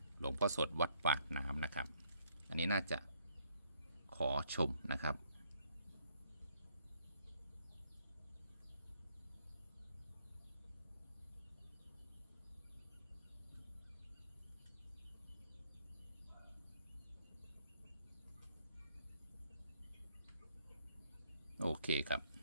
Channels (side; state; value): both; inverted; correlation -0.69